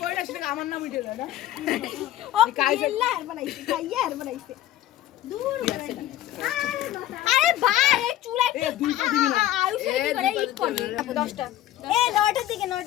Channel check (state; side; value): quieter; right; 13.4 dB